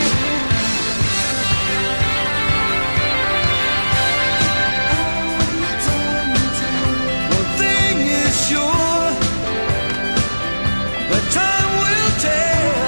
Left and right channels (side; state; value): both; inverted; correlation -1.00